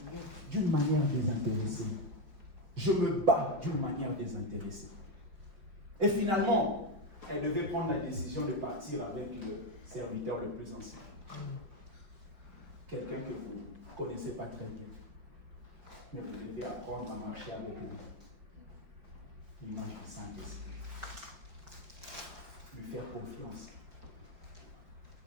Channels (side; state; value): left; late; 5.1 ms